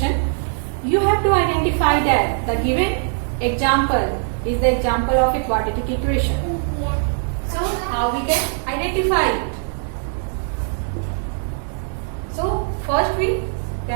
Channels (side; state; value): left; silent; 65 dB below the other